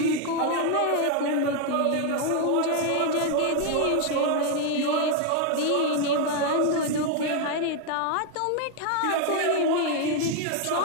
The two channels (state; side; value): different; both; correlation 0.01